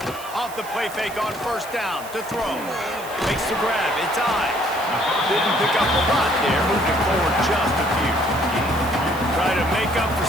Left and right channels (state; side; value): noise; right; hiss, 16 dB below the sound